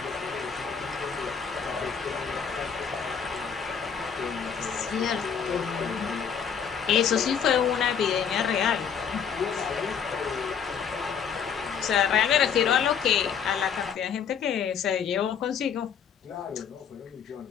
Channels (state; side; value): quieter; right; 7.3 dB